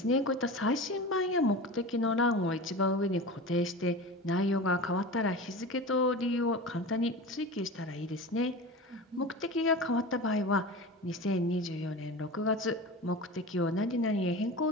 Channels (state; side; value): normal; both; correlation 0.31